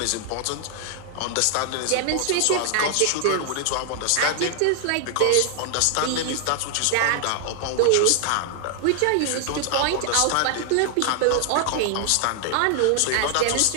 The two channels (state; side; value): different; both; correlation 0.00